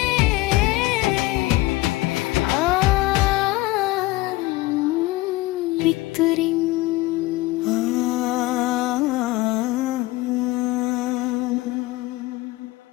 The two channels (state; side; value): quieter; right; 19.5 dB